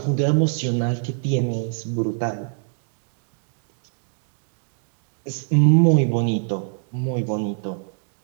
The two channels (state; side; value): silent; left; digital silence